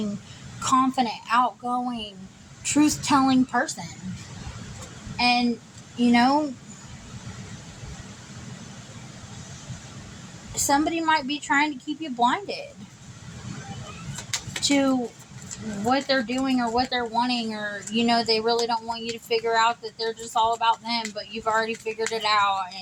confident, outgoing, truth-telling person. And you know, somebody might be trying to keep you blinded to what they're doing or what they're wanting, or, you know, they really don't want you to figure out that they're just all about them, but you've already figured it out.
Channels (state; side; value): identical; both; correlation 1.00